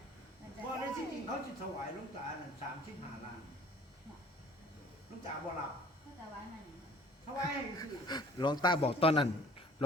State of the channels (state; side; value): normal; both; correlation 0.51